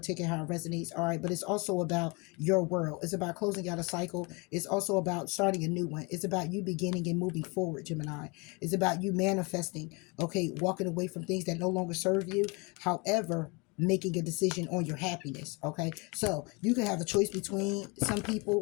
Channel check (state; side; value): quieter; right; 28.8 dB